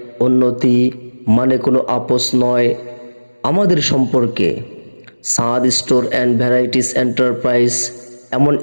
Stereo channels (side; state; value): both; inverted; correlation -1.00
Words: উন্নতি, মানে কোনো আপোষ নয় আমাদের সম্পর্কে। সাদ স্টোর অ্যান্ড ভ্যারাইটিস এন্টারপ্রাইজ এমন